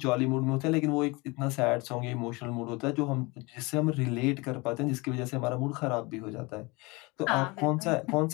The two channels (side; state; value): right; quieter; 25.4 dB